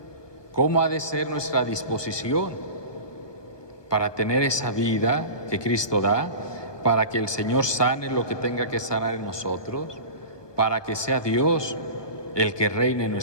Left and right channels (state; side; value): late; right; 1.2 ms